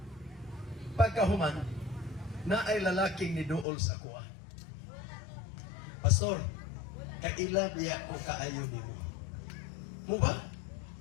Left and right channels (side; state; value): right; drops out; at 3.7 s